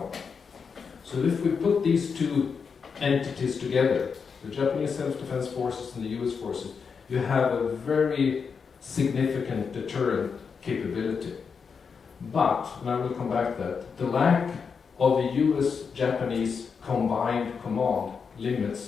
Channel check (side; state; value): right; quieter; 5.8 dB